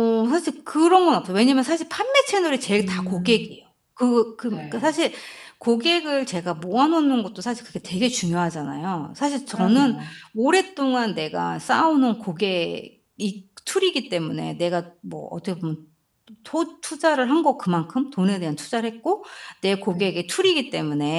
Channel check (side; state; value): both; identical; correlation 1.00